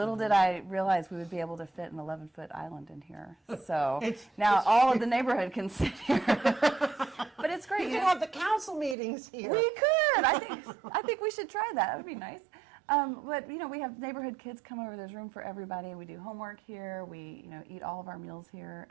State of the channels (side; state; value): left; drops out; at 9.0 s